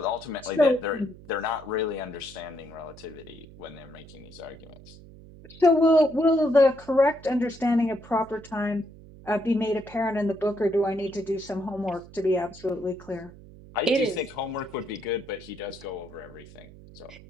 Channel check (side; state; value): right; noise; hum, 19 dB below the sound